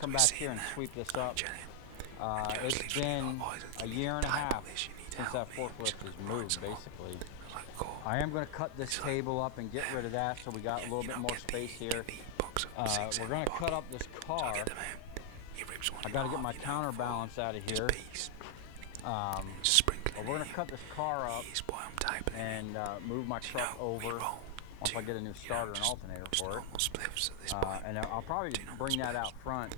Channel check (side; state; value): both; different; correlation 0.00